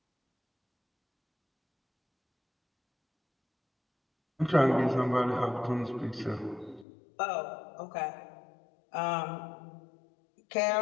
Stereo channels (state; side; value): drops out; right; at 6.9 s